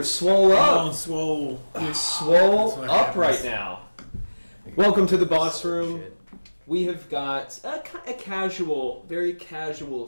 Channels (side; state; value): both; inverted; correlation -1.00